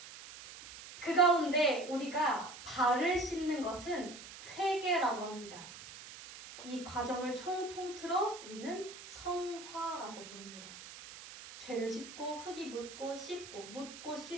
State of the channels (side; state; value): right; noise; hiss, 14 dB below the sound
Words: 그 가운데 우리가 발을 씻는 것은 회개라고 합니다. 이 과정을 통틀어 우리는 성화라고 부릅니다. 죄를 짚고 흙이 묻고 씻고 묻고